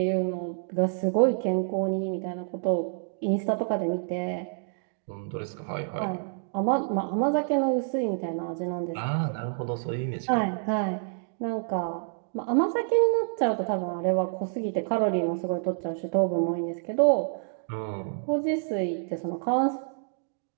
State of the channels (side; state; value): left; silent; digital silence